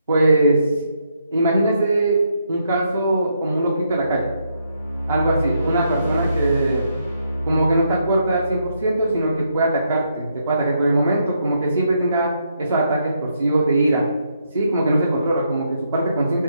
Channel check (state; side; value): inverted; both; correlation -0.77